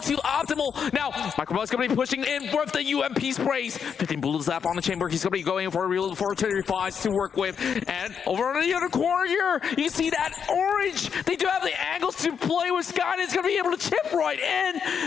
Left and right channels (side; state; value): right; quieter; 7.1 dB